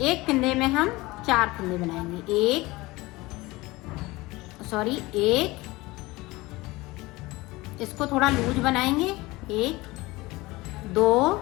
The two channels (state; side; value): quieter; right; 21.0 dB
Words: एक फिंदे में हम 4 फिंदे बनाएंगे। एक, इसको थोड़ा लूज बनाएंगे। 1 2